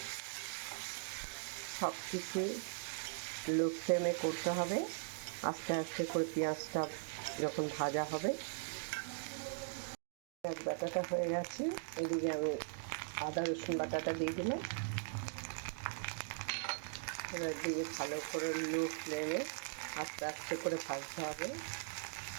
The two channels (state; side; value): silent; left; digital silence